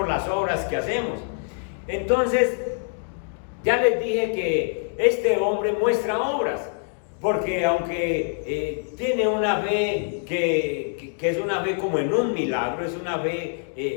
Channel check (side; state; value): right; silent; 62 dB below the other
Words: las obras que hacemos. Entonces, ya les dije que este hombre muestra obras, porque aunque tiene una fe que es una fe como en un milagro, es una